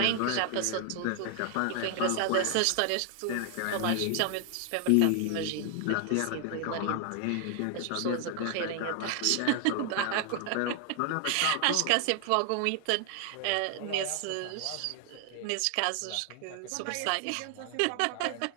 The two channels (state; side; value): different; both; correlation 0.00